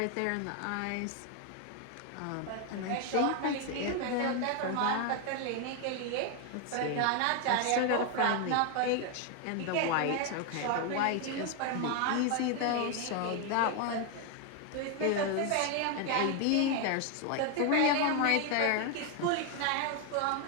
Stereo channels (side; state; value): both; different; correlation 0.01